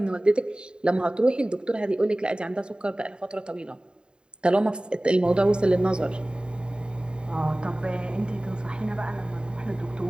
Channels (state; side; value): late; left; 0.050 ms